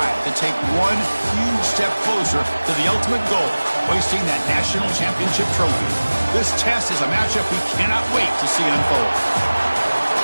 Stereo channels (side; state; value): both; inverted; correlation -1.00